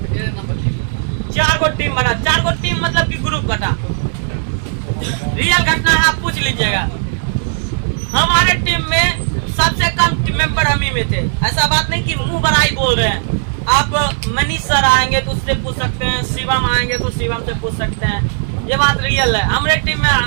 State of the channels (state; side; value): silent; left; 57 dB below the other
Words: 4 गो टीम बना, 4 गो टीम मतलब कि ग्रुप बना। रियल घटना है, आप पूछ लीजिएगा। हमारे टीम में सबसे कम टीम मेंबर हम ही में थे। ऐसा बात नहीं कि मुंह बड़ाई बोल रहे हैं। आप मनीष सर आएंगे तो उससे पूछ सकते हैं, शिवम आएंगे तो शिवम से पूछ सकते हैं, ये बात रियल है। हमारे टीम में